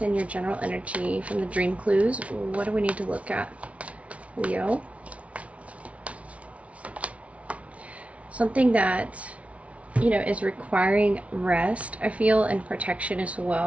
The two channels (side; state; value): left; late; 0.064 ms